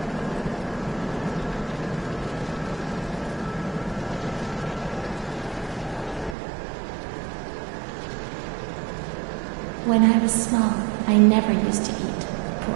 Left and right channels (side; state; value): left; drops out; at 6.4 s